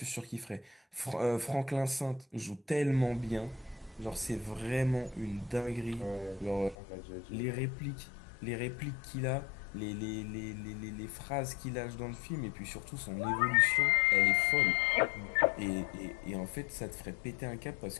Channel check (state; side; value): drops out; right; at 6.8 s